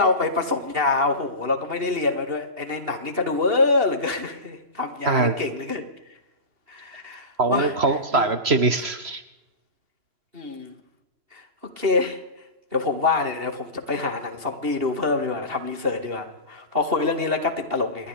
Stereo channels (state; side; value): late; left; 2.8 ms